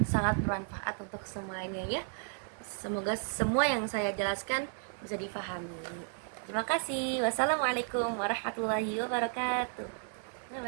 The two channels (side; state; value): left; silent; 55 dB below the other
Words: sangat bermanfaat untuk semuanya ya. Semoga semua yang saya jelaskan bisa difahami. Terima kasih. Wassalamualaikum warahmatullahi wabarakatuh. Bye